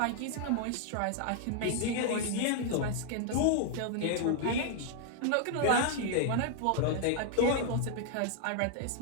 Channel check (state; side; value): different; both; correlation 0.00